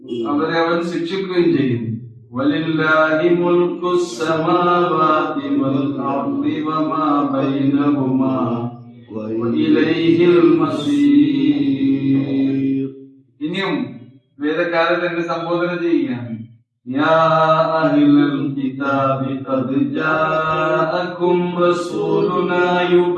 അവരെ അവൻ ശിക്ഷിക്കുകയും ചെയ്യും. വലില്ലാഹി മുൽക്കുസ് സമാവാതി വൽ അർളി വമാ ബൈനഹുമാ വഇലൈഹിൽ മസീർ. ഇനിയും വേദക്കാരൻ തന്നെ സംബോധന ചെയ്യുകയാണ്. യാ അഹ്ലൽ കിതാബി ഖദ് ജാഅകും റസൂലുനാ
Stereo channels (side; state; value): both; identical; correlation 1.00